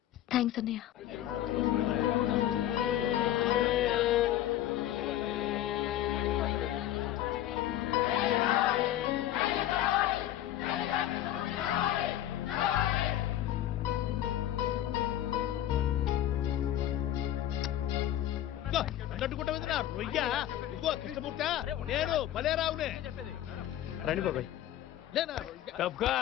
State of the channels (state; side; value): quieter; right; 12.7 dB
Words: థ్యాంక్స్ అన్నయ్య. అన్నట్టుకుంటా రొయ్య. ఇదిగో కృష్ణమూర్తి, నేను భలేరావునే. రండి బాబాయ్.